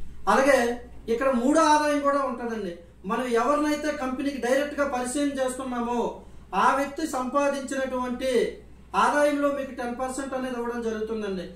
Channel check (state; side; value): identical; both; correlation 1.00